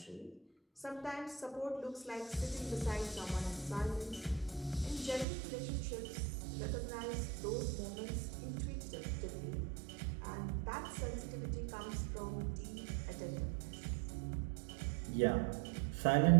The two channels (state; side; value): drops out; left; at 5.2 s